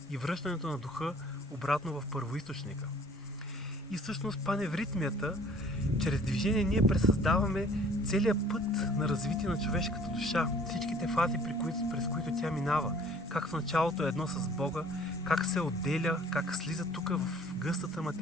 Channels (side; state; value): both; normal; correlation 0.53